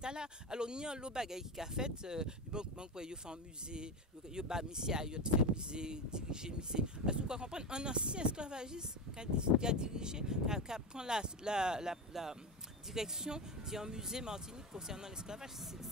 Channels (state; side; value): normal; both; correlation 0.19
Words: Alors, il y a un lot de bagailles qui a fait, il fait un musée, il a fait musée, dirigé musée. Est-ce que vous comprenez? Un ancien esclavagiste qui a dirigé, qui prend la direction d'un musée Martinique concernant l'esclavage,